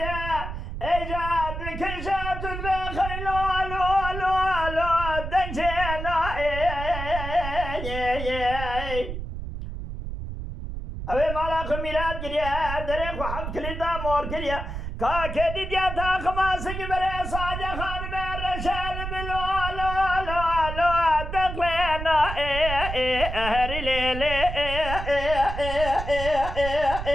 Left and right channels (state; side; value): noise; right; rumble, 6 dB below the sound